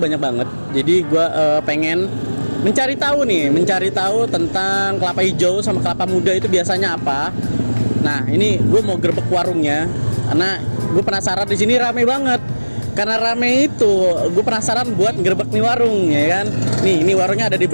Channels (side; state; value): both; inverted; correlation -1.00